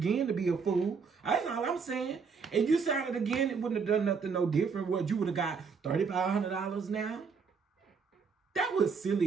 to be a fool. That's all I'm saying. If you signed it again, it wouldn't have done nothing no different. What, you would have got $3,500 now? That was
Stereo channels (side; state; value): left; quieter; 5.6 dB